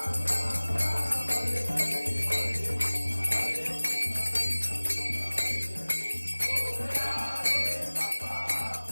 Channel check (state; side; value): inverted; both; correlation -1.00